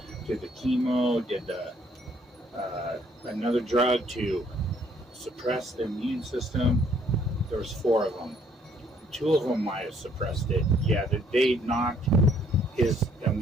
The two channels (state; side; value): normal; both; correlation 0.64